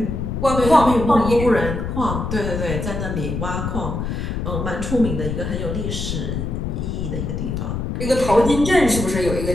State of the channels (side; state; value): left; noise; rumble, 3 dB below the sound